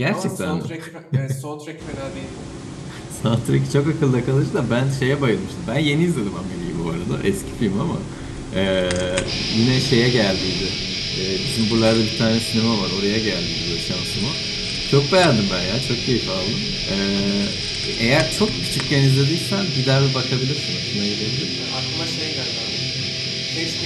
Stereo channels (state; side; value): identical; both; correlation 1.00